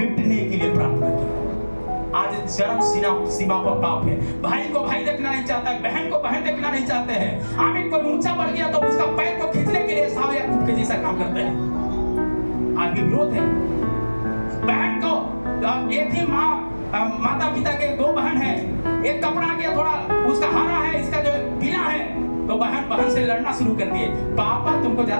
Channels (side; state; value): both; inverted; correlation -1.00